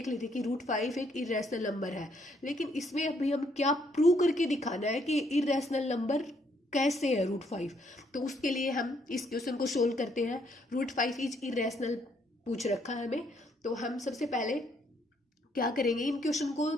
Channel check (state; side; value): normal; both; correlation 0.70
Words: ली थी कि √5 एक इरेशनल नंबर है। लेकिन इसमें अभी हम क्या प्रूव करके दिखाना है कि इरेशनल नंबर कैसे है √5। तो उसके लिए हम इस क्वेश्चन को सोल्व करते हैं। √5 इज इरेशनल पूछ रखा है हमें। तो हम सबसे पहले क्या करेंगे, इन क्वेश्चन को